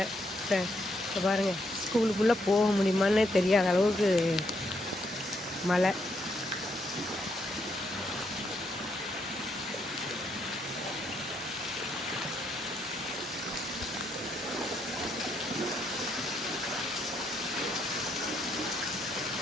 இப்போ பாருங்கள், ஸ்கூலுக்குள்ளே போக முடியுமான்னு தெரியாத அளவுக்கு மழை.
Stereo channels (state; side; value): normal; both; correlation 0.75